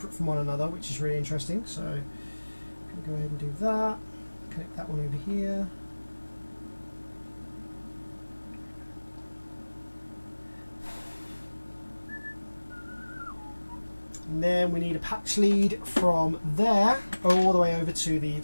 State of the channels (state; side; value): inverted; both; correlation -1.00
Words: from one another, which is really interesting. So I'm going to go ahead and do that, connect that one over here. And then we need a patch lead from there all the way over to the